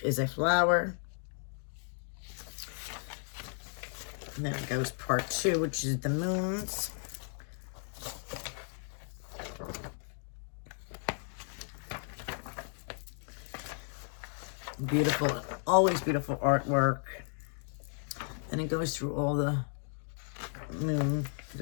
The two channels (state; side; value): silent; right; 55 dB below the other